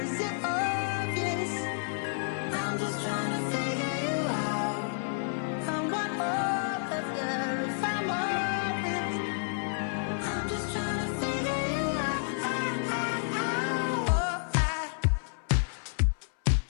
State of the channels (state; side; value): silent; right; 58 dB below the other